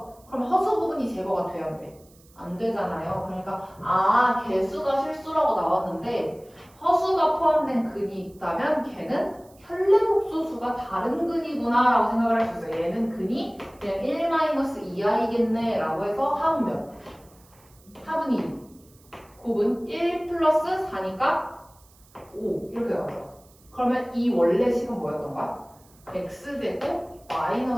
그럼 허수 부분이 제거가 돼야 돼. 안 되잖아요. 그러니까 개수가 실수라고 나왔는데 허수가 포함된 근이 있다면 걔는 켤레복소수가 다른 근이구나 라고 생각을 할 수 있어요. 얘는 근이 그냥 1-2i겠네 라고 해서 합은 몇? 합은 2 곱은 1 플러스 4니까 5 이렇게 나오죠. 그러면 이 원래 식은 뭐였던 거야? x제곱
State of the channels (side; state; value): right; noise; hiss, 29 dB below the sound